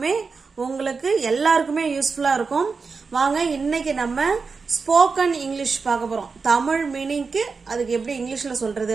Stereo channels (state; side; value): quieter; left; 4.8 dB